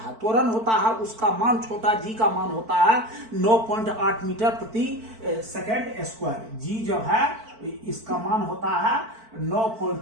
त्वरण होता है, उसका मान, छोटा जी का मान होता है 9.8 मीटर प्रति सेकेंड स्क्वायर। जी जो है इसका मान होता है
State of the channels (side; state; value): left; late; 4.5 ms